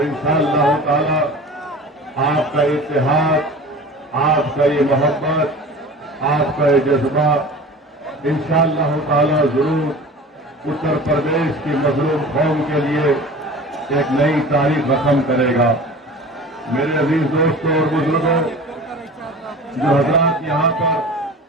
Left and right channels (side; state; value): both; normal; correlation 0.38